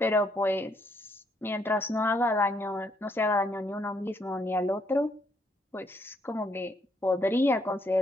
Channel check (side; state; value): both; normal; correlation 0.72